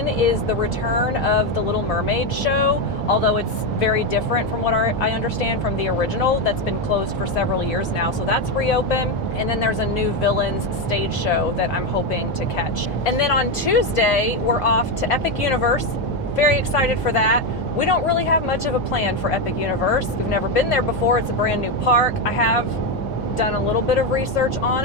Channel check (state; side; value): normal; both; correlation 0.09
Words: is the return of the Little Mermaid show, although it's very different from what I understand from the original that's been closed for several years now. So that's reopened. And then there's a new Villains stage show that I'm hoping to catch. And then on Tuesday, we're off to Epic Universe. Very excited for that. We don't really have much of a plan for Epic Universe. We've never been there before. It's a brand new park. I have done a little bit of research on